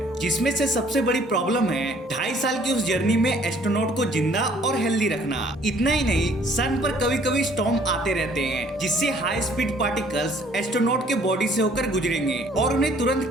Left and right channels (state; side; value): normal; both; correlation 0.59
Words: जिसमें से सबसे बड़ी प्रॉब्लम है 2.5 साल की उस जर्नी में एस्ट्रोनॉट को जिंदा और हेल्दी रखना। इतना ही नहीं, सन पर कभी कभी स्टॉर्म आते रहते हैं जिससे हाई स्पीड पार्टिकल्स एस्ट्रोनॉट के बॉडी से होकर गुजरेंगे और उन्हें तुरंत